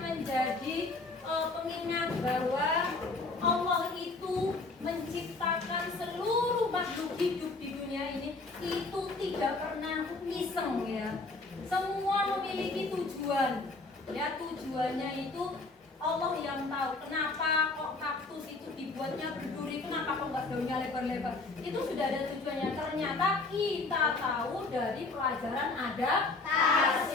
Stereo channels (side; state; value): right; quieter; 3.5 dB